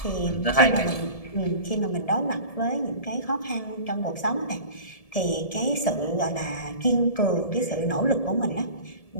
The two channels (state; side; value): late; right; 1.7 ms